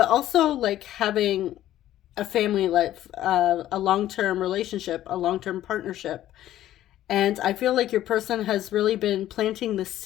also like having a family life, a long-term relationship, a long-term partnership. And I feel like your person has really been planting the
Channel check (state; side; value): quieter; right; 13.1 dB